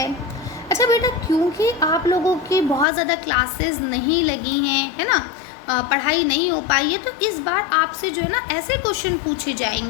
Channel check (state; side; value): drops out; right; at 2.9 s